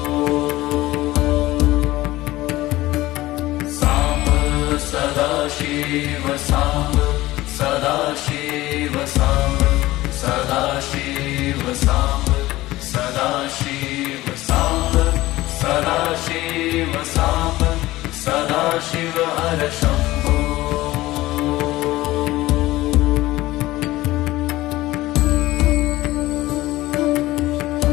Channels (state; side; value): quieter; right; 17.6 dB